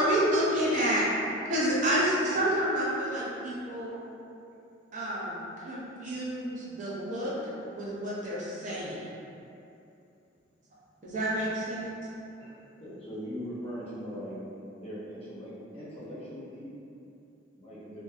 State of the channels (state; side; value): normal; both; correlation 0.25